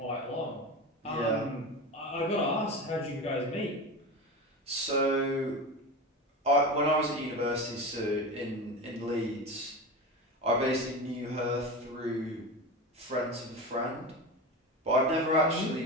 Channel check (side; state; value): both; normal; correlation 0.25